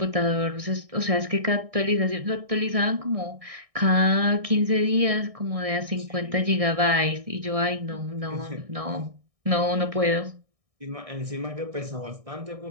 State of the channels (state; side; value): late; left; 1.6 ms